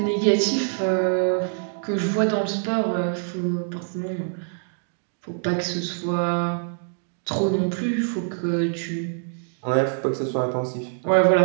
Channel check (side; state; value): left; silent; digital silence